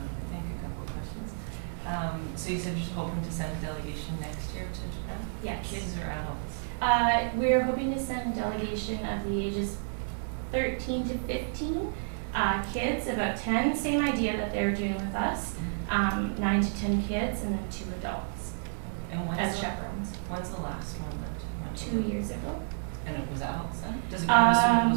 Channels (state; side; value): silent; left; digital silence